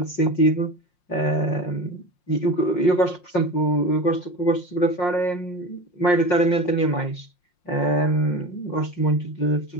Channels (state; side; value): late; right; 5.6 ms